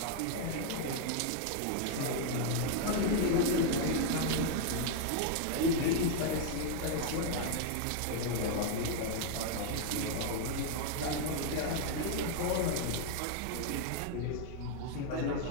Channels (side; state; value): both; different; correlation 0.00